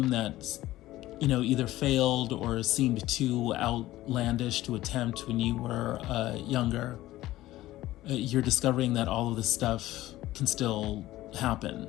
that, either failed or seemed too outlandish to attempt when you were younger. You're discovering that all of this stuff can still happen.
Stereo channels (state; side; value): quieter; right; 16.0 dB